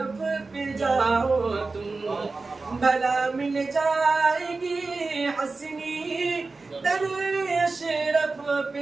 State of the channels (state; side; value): quieter; left; 3.8 dB